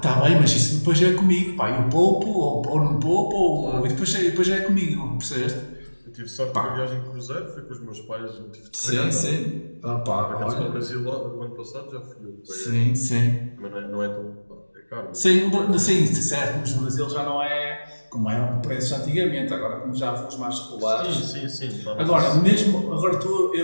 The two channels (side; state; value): both; inverted; correlation -1.00